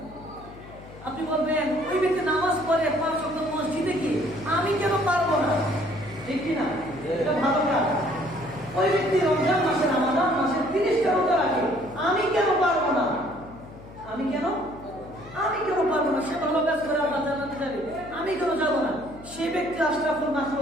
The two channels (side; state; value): left; noise; hum, 18 dB below the sound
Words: আপনি বলবেন ওই ব্যক্তি নামাজ পড়ে 5 ওয়াক্ত মসজিদে গিয়ে আমি কেন পারবো না, ঠিক কি না? এটা ভালো কাজ। ওই ব্যক্তি রমজান মাসে রমাদান মাসে 30টা রোজা রাখে, আমি কেন পারবো না? আমি কেন পারবো না? সে ভালো কাজ করে আল্লাহ জান্নাতে যাবে, আমি কেন যাব না? সে ব্যক্তি আশরাফুল